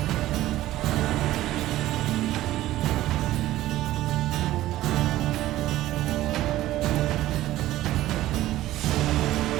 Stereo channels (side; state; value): left; quieter; 15.1 dB